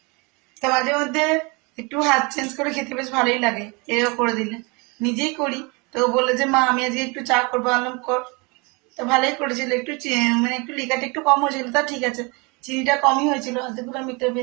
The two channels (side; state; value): left; quieter; 28.9 dB